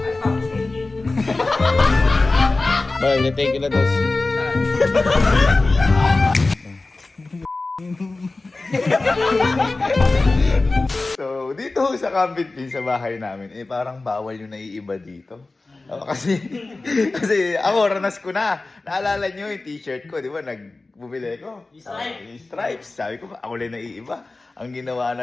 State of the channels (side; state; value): right; quieter; 3.3 dB